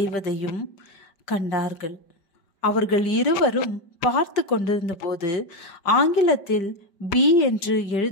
கண்டார்கள். அவர்கள் இருவரும் பார்த்து கொண்டிருந்த போது ஆங்கிலத்தில் பி என்று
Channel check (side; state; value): right; late; 5.1 ms